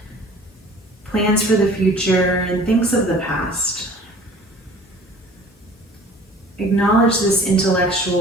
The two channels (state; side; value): normal; both; correlation 0.47